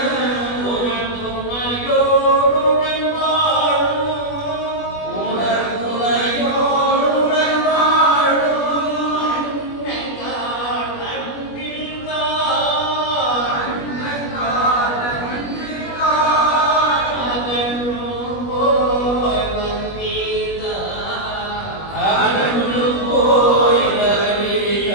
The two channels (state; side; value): late; right; 21 ms